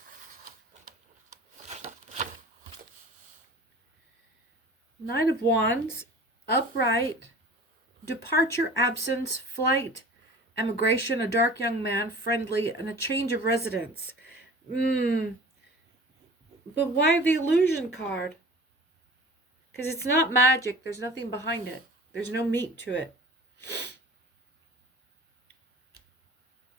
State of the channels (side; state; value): both; normal; correlation 0.42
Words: Knight of Wands, upright, departure, absence, flight, emigration, a dark young man, friendly, and a change of residence. But why the illusion card? Because it's not magic. There's nothing behind it. There's no meat to it.